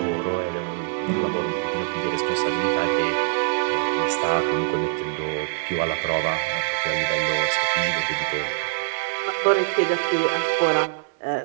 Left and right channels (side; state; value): left; quieter; 36.7 dB